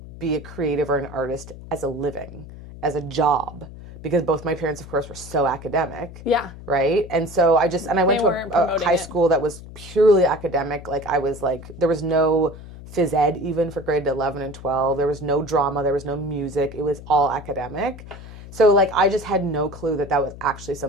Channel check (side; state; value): left; noise; hum, 15 dB below the sound